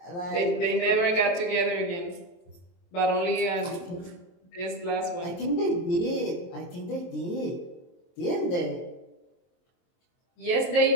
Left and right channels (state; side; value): late; right; 23 ms